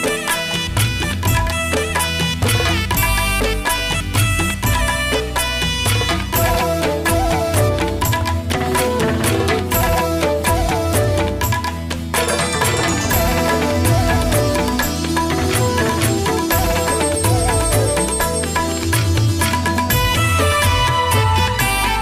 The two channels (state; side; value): identical; both; correlation 1.00